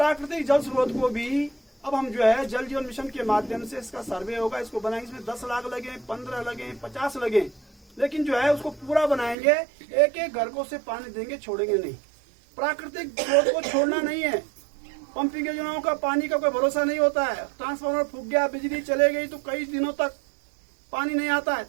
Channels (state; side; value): drops out; left; at 9.3 s